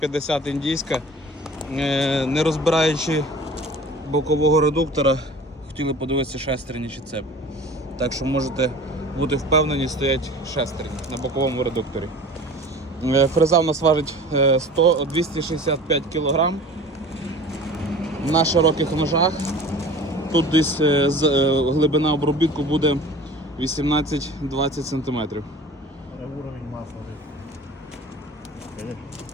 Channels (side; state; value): both; normal; correlation 0.41